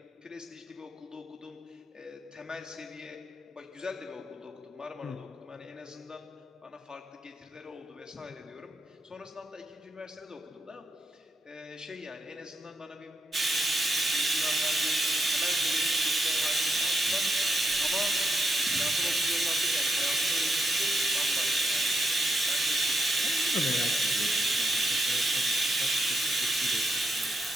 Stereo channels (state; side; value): normal; both; correlation 0.82